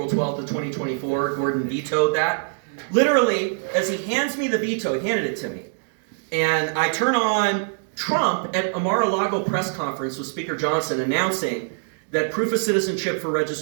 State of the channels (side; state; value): left; silent; 63 dB below the other